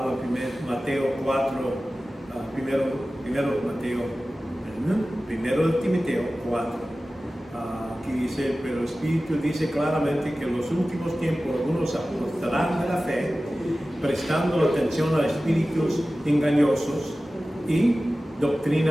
en Mateo 4, primero de Timoteo 4. Aquí dice, pero el Espíritu dice claramente que en los últimos tiempos algunos apostarán de la fe, prestando atención a espíritus engañosos y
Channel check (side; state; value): both; normal; correlation 0.96